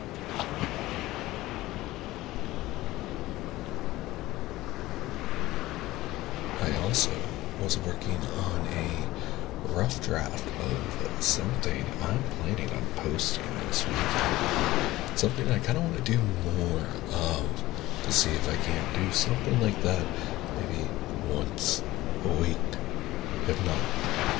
I also was working on a rough draft of something I'm planning on posting this weekend. Something I kind of want to do more of to see if I can't do something like that maybe once a week, if not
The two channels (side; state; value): right; quieter; 17.6 dB